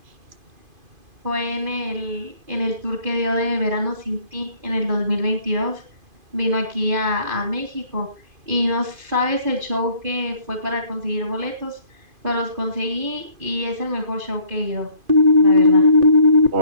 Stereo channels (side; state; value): left; late; 2.5 ms